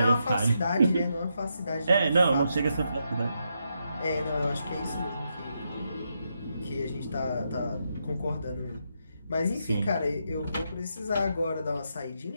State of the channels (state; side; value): inverted; both; correlation -0.82